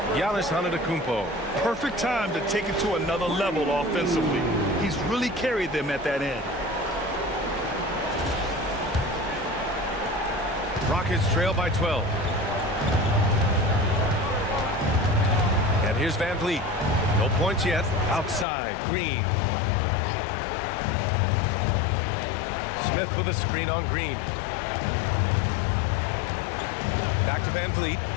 Giannis Antetokounmpo. Perfect time to take it to another level offensively. He's really carried them at that end. Rockets trail by 12. And here's Van Vliet. No points yet. Outside, Green. Smith with a screen on Green. Back to Van Vliet.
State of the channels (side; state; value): right; drops out; at 18.4 s